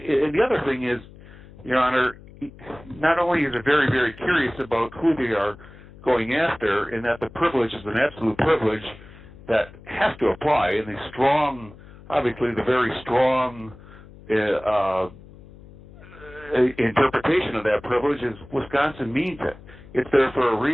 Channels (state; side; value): noise; left; hum, 20 dB below the sound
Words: the other thing is, Your Honor, not only is it very, very curious about who they are going after, and that the privilege is an absolute privilege that has to apply, and the strong, obviously the very strong interpretation of that privilege is Wisconsin means it. It's there for a